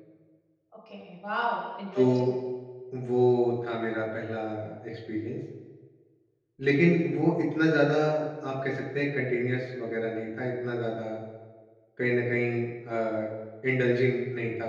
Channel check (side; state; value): both; identical; correlation 1.00